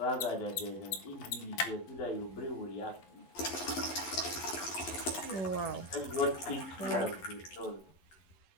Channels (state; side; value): late; right; 11 ms